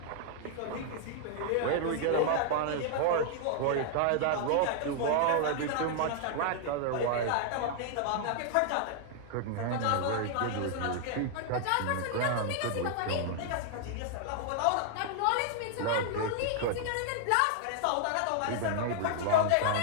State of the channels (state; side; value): different; both; correlation 0.00